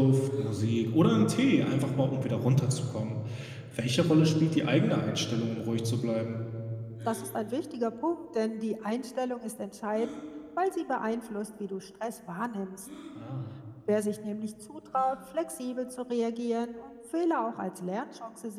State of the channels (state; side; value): identical; both; correlation 1.00